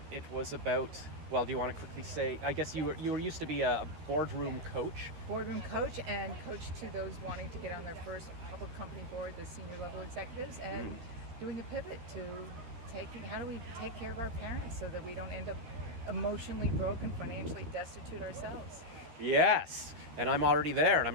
it was about, well, do you want to quickly say, I guess you were used to be a boardroom coach. Boardroom coach and coach to those wanting to get on their first public company board, the senior level executives, and doing a pivot to how do we take care of our parents so that we don't end up emotionally broken, financially destitute ourselves. Yes, and I'm already there, and I'm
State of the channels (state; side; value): late; left; 13 ms